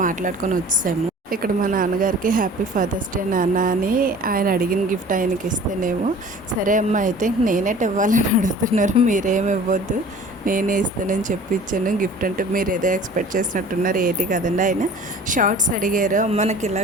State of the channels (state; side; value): normal; both; correlation 0.46